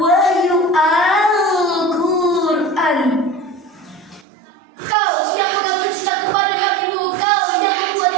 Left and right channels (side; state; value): left; drops out; at 4.2 s